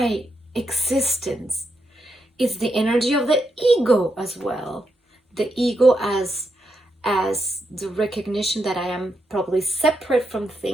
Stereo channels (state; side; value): normal; both; correlation 0.82